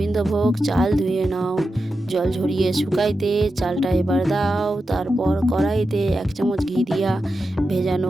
চাল ধুয়ে নাও, জল ঝরিয়ে শুকাইতে চালটা এবার দাও। তারপর কড়াইতে 1 চামচ ঘি দিয়া ভেজানো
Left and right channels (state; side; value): normal; both; correlation 0.90